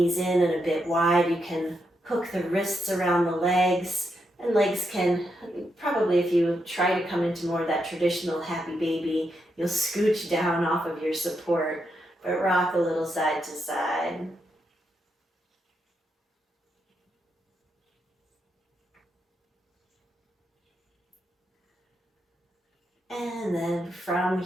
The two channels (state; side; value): normal; both; correlation 0.82